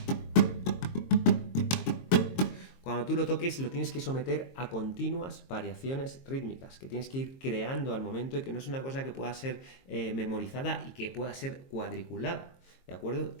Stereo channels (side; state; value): right; late; 22 ms